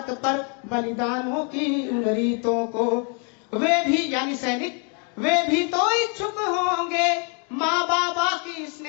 पर बलिदानों की उन रीतों को। वे भी यानी सैनिक, वे भी तो इच्छुक होंगे माँ बाबा की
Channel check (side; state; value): right; quieter; 38.0 dB